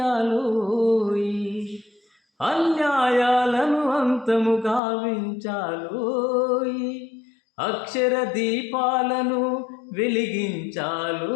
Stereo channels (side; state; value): right; drops out; at 4.8 s